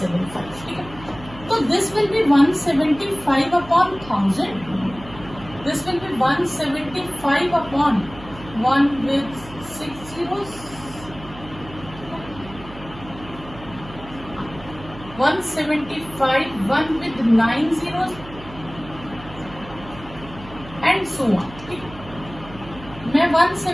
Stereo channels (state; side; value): noise; right; hum, 17 dB below the sound